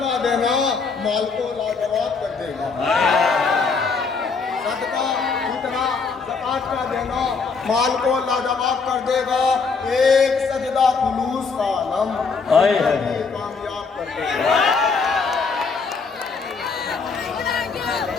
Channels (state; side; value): quieter; right; 4.8 dB